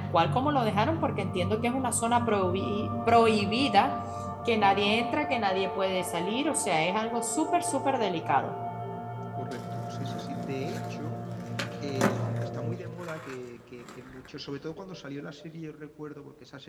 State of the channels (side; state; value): both; identical; correlation 1.00